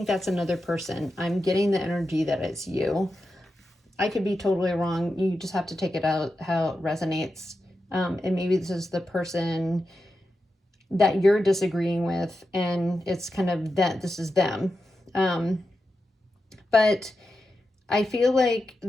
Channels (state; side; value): normal; both; correlation 0.89